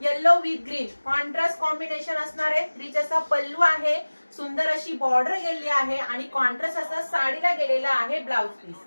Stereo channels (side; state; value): both; inverted; correlation -1.00